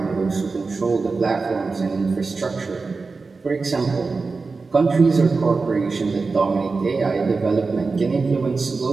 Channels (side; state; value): left; quieter; 4.2 dB